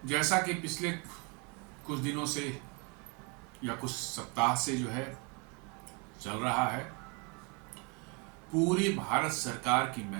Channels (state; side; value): quieter; left; 32.2 dB